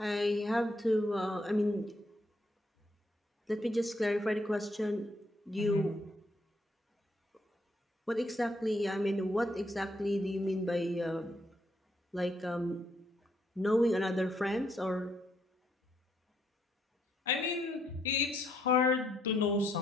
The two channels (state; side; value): normal; both; correlation 0.74